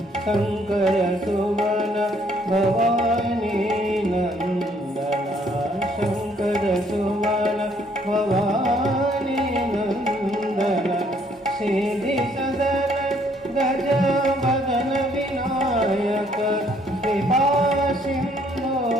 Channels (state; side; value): normal; both; correlation 0.65